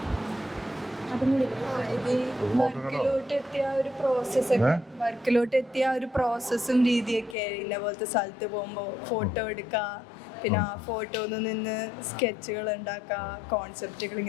അതും കൂടി വർക്കിലോട്ട് എത്തിയ ഒരു പ്രോസസ്സും രീതിയൊക്കെ ഇന്ന പോലത്തെ സ്ഥലത്ത് പോകുമ്പോൾ ഫോട്ടോ എടുക്കുക, പിന്നെ ആ ഫോട്ടോയിൽ നിന്ന് സ്കെച്ചുകൾ ഉണ്ടാക്കുക, കോൺസെപ്റ്റുകൾ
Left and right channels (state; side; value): drops out; right; at 7.4 s